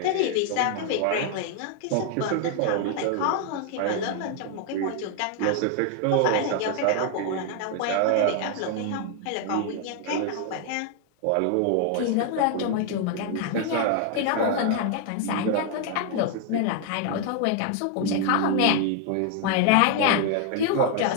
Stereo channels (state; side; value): different; both; correlation 0.00